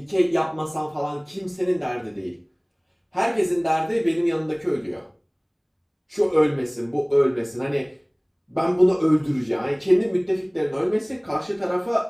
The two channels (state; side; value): identical; both; correlation 1.00